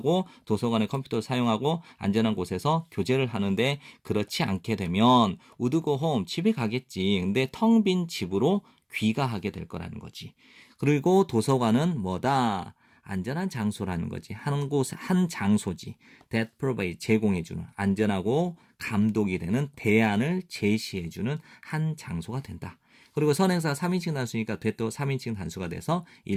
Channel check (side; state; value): both; identical; correlation 1.00